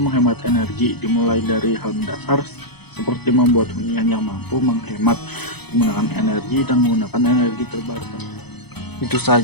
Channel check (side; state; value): right; late; 0.98 ms